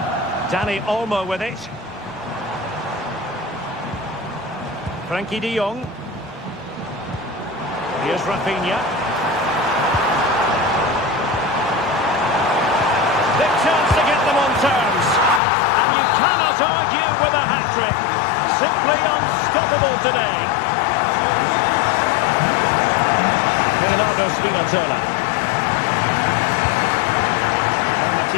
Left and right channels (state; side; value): drops out; right; at 15.4 s